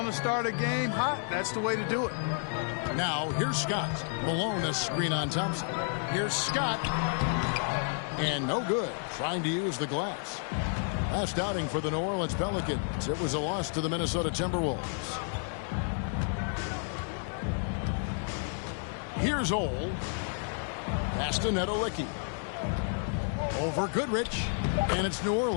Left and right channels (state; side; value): silent; right; 57 dB below the other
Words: to start a game hot, that's the way to do it. Now, here's Scott. Malone a screen on Thompson. Here's Scott. And no good. Trying to use the glass. Last outing for the New Orleans Pelicans. It was a loss to the Minnesota Timberwolves. Here's Ole. Pass to Nedolicki. Over Goodrich. And it's New